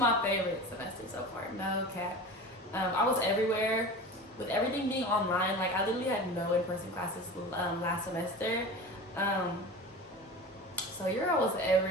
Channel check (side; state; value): both; normal; correlation 0.33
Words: favorite semester so far, no cap. I was everywhere. With everything being online, like I literally had no in-person classes last semester. So your girl was